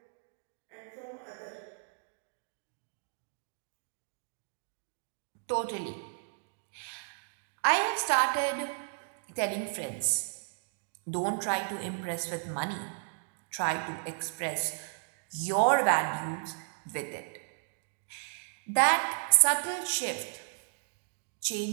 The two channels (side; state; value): left; silent; digital silence